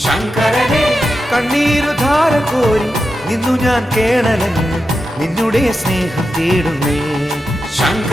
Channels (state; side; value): normal; both; correlation 0.89